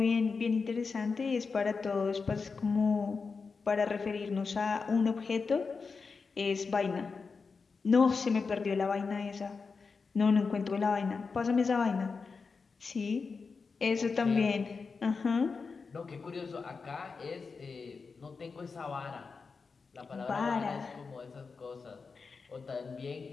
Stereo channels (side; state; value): right; quieter; 4.8 dB